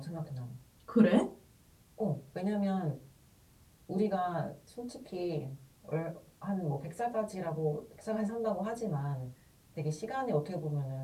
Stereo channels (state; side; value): identical; both; correlation 1.00